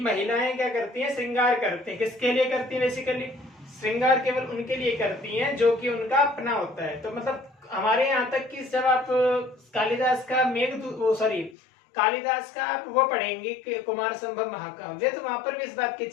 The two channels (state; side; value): drops out; right; at 11.6 s